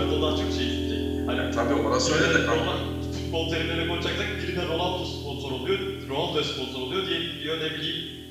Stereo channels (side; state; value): both; identical; correlation 1.00